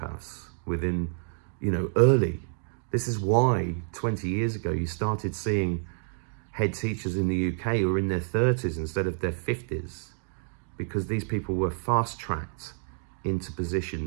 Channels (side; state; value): left; silent; digital silence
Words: within, you know, early. This is why 20 years ago you started seeing head teachers in the UK who were in their 30s instead of their 50s, because these people were fast-tracked into